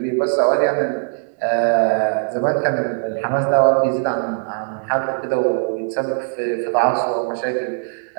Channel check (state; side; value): silent; left; 60 dB below the other